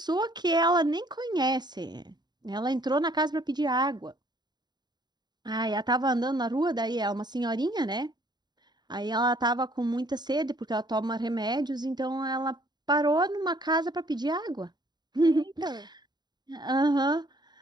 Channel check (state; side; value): late; left; 0.20 ms